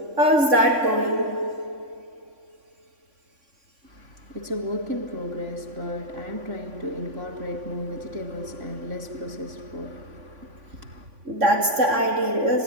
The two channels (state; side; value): late; left; 3.5 ms